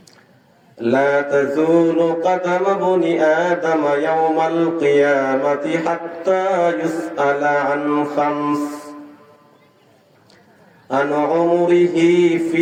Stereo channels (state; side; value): identical; both; correlation 1.00